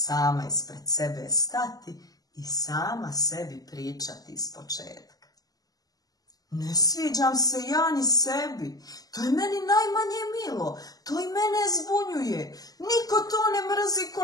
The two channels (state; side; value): late; right; 0.18 ms